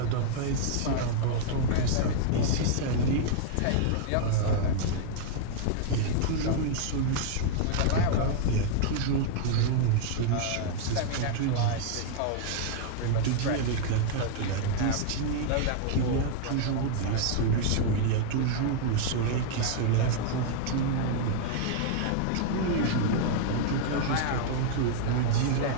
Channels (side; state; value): both; different; correlation -0.01